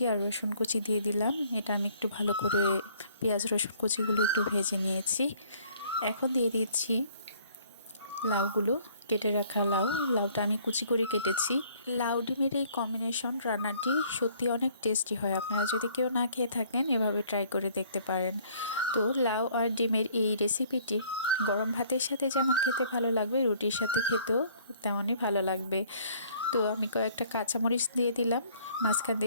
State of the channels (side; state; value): both; inverted; correlation -0.59